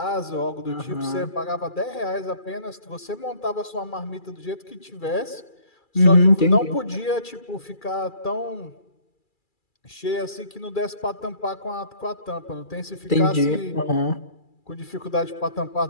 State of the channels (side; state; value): right; late; 2.3 ms